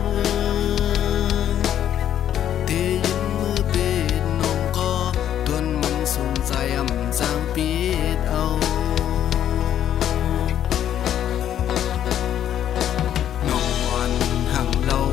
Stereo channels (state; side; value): quieter; right; 10.5 dB